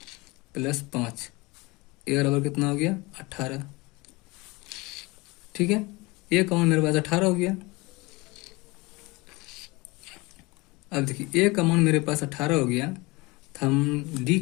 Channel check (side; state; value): right; quieter; 24.0 dB